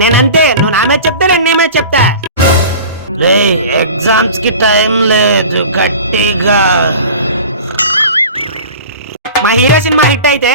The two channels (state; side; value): inverted; both; correlation -0.38